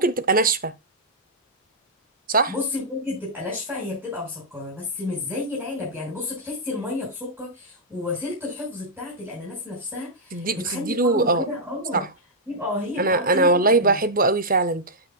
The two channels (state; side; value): normal; both; correlation -0.08